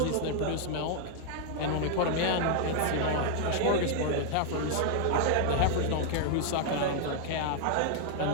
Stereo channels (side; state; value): both; different; correlation 0.00